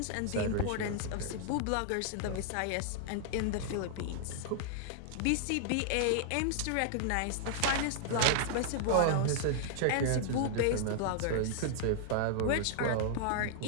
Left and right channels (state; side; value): different; both; correlation -0.01